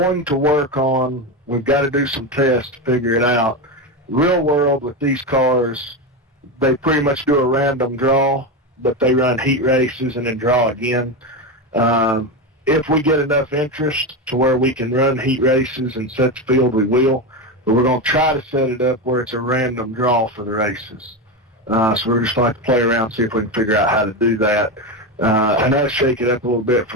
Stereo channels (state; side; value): normal; both; correlation 0.15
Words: to work on, we've got to do some tests to figure it out. Real world with these cars, they pretty much do a random draw, but they run heat races and then draw again. If we get enough interest to where we can run heat races and set the field, we will. But we're going to try to set it up where it's a random draw for the races. So we're just going to play around, see if we can figure out how to do that. And that'll shake it up a little bit